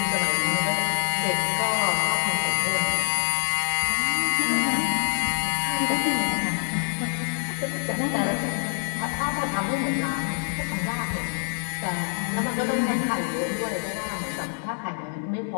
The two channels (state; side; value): silent; right; digital silence